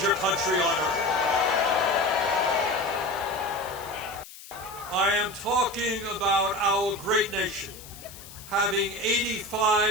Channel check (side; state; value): left; noise; hiss, 17 dB below the sound